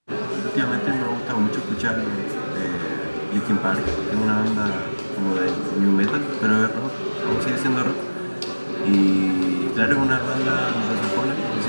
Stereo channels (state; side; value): inverted; both; correlation -1.00